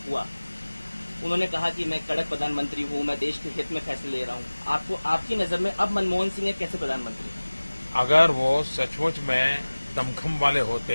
हुआ, उन्होंने कहा कि मैं कड़क प्रधानमंत्री हूं, मैं देश के हित में फैसले ले रहा हूं। आपकी नजर में अब मनमोहन सिंह एक कैसे प्रधानमंत्री? अगर वो सचमुच में दमखम वाले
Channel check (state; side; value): inverted; both; correlation -1.00